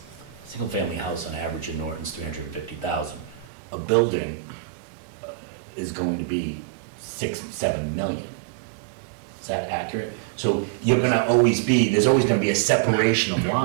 Single-family house on average in Norton's $350,000. A building is going to be 6-7 million. Is that accurate? So you're gonna always be, there's always gonna be a separation of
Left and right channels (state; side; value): drops out; left; at 3.5 s